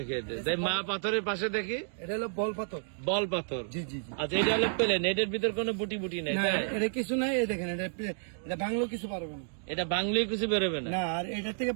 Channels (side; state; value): left; silent; digital silence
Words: মা পাথরের পাশে দেখি, এটা হলো বল পাথর। জি জি জি। আচ্ছা, এটা হলো প্লেন, এটার ভিতর কোনো বুটি নেই। এটা কিছু নাই। এই দেখেন, এটা বাংলো কিছু পারবে না, এটা বাংলায় কিছু বেরোবে না। আর এটা থেকে